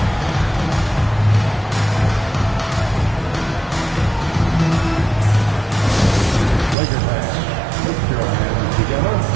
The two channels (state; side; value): drops out; left; at 6.8 s